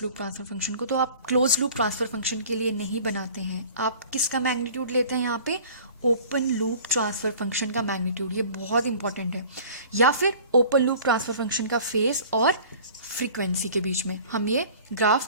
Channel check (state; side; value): inverted; both; correlation -0.46